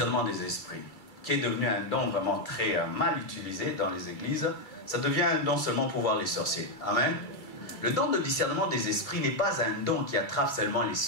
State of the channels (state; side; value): late; right; 2.3 ms